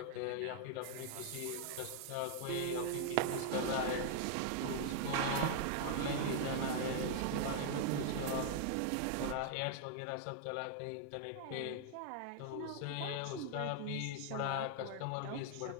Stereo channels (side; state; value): both; different; correlation 0.00